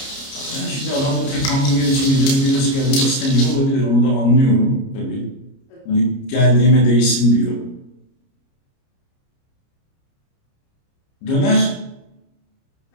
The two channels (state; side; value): late; right; 30 ms